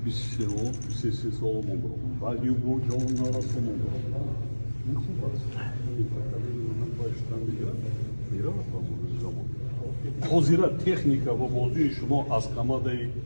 23 сол мобарок. Баъди бо ҷон нарасо мобарок. Ин хуб аст. Ин поколение ман баштан меравад ба замон. Ҳозира техника ва бозии шумо аз командаи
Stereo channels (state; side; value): inverted; both; correlation -1.00